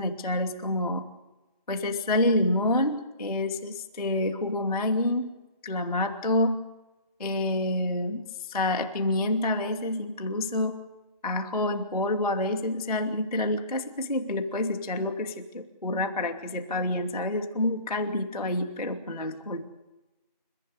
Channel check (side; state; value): both; inverted; correlation -0.43